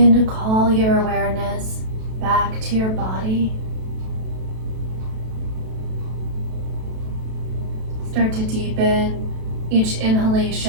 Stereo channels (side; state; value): left; late; 32 ms